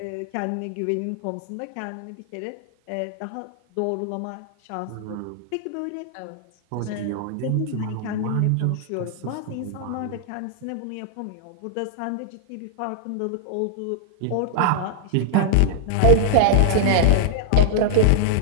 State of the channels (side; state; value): both; different; correlation -0.01